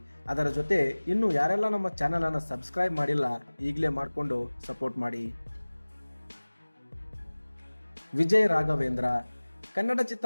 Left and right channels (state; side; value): inverted; both; correlation -1.00